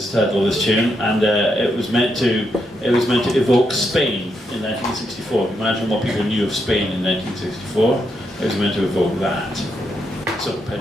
the title of this tune, and it was meant to evoke Spain in 1964. Imagine what people knew of Spain in 1964. It was meant to evoke that. So,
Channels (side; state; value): both; normal; correlation 0.81